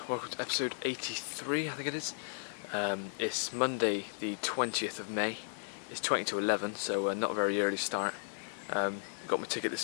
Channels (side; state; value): right; silent; digital silence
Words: welcome to episode 83, I think it is. It's Monday, the 20th of May. It's 20 to 11, so not a very early start. Got my ticket